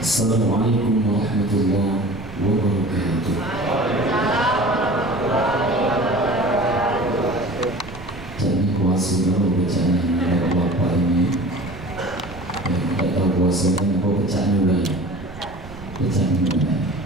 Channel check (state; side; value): noise; right; rumble, 17 dB below the sound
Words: Assalamualaikum warahmatullahi wabarakatuh. Jadi kuasa dulu bacaan bapak ini. Yang tidak tahu kuasanya apa bacaan juga. Bacaan juga.